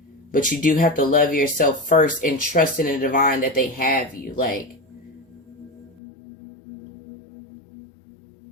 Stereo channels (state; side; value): drops out; right; at 6.0 s